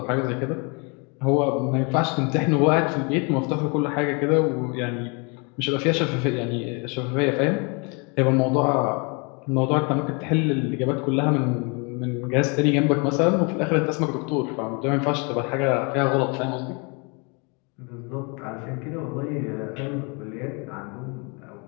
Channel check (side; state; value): right; quieter; 32.1 dB